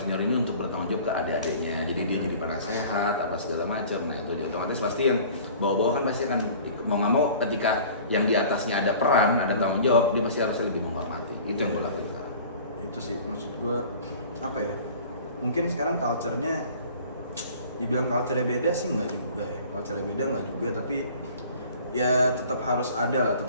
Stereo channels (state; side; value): inverted; both; correlation -0.46